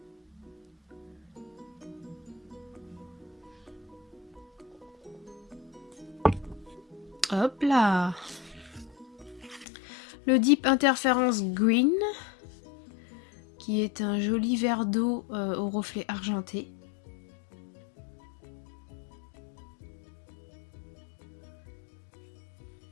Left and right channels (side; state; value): right; drops out; at 9.7 s